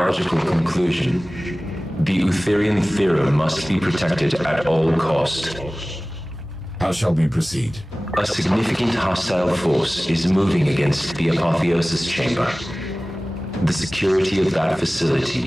conclusion. The Utherian theorem must be protected at all cost. How shall we proceed? A significant hostile force is moving against the Apotheosis chamber. The security of that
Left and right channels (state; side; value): normal; both; correlation 0.98